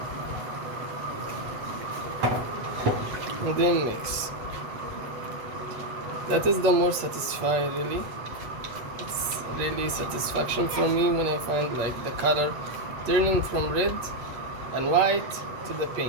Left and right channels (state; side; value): late; left; 8.3 ms